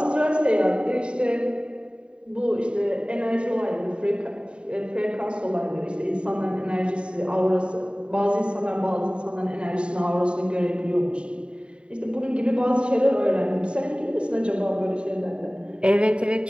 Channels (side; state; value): left; late; 0.053 ms